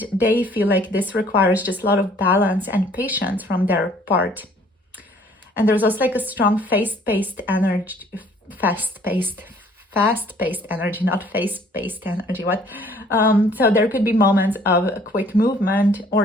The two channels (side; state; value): both; normal; correlation 0.58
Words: they feel like this requires just a lot of balance and patience from their part. And there's also like a strong fast-paced energy, not face-based energy. So there could be moments of quick movement or